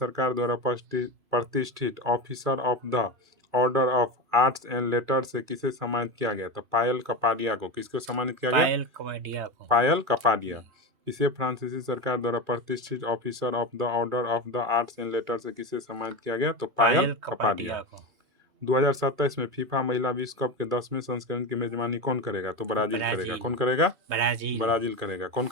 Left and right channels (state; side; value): late; left; 2.4 ms